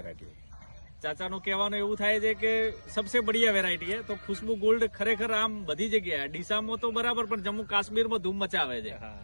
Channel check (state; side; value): inverted; both; correlation -1.00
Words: है. ચાચાનું કહેવાનું એવું થાય છે કે સબસે બઢિયા વેરાયટી છે. તો ખુશ્બુ ગોલ્ડ ખરેખર આમ બધી જગ્યાએ ડીસામાં તો બરાબર પણ જમ્મુ કાશ્મીરમાં ધૂમ મચાવે છે.